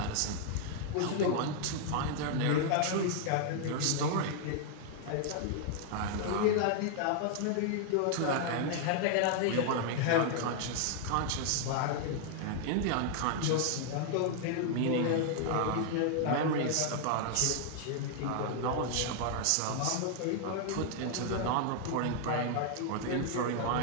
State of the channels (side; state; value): both; different; correlation 0.00